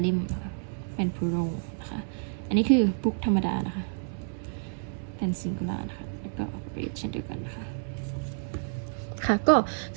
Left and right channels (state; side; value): silent; left; 58 dB below the other